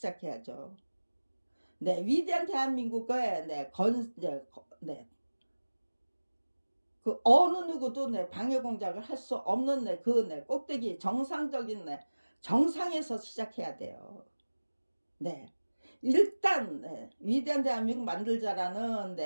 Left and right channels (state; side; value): inverted; both; correlation -1.00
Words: 위대한 대한민국의 그 어느 누구도 방해 공작을 할 수 없는 꼭대기 정상적인 정상에서 시작해야 돼요. 일단 위대한 대한민국 만들자라는